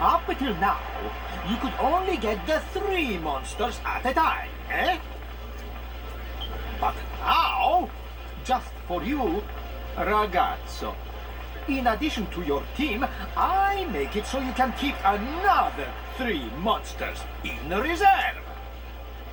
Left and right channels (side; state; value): both; identical; correlation 1.00